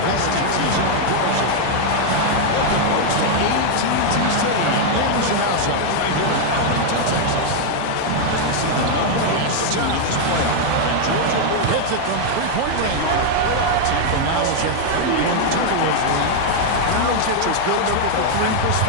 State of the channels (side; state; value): both; different; correlation 0.00